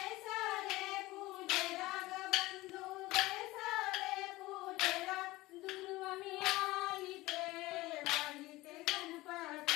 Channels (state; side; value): quieter; right; 19.4 dB